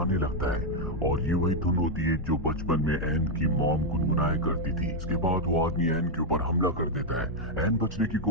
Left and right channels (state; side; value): normal; both; correlation 0.01